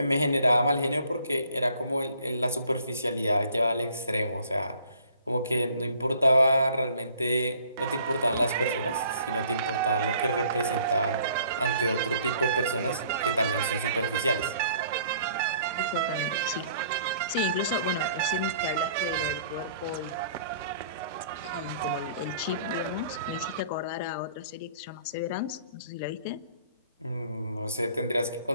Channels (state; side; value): inverted; both; correlation -0.57